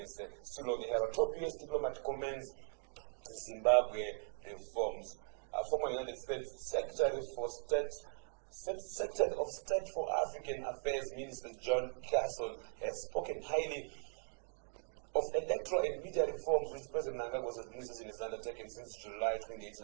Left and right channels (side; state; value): left; silent; 51 dB below the other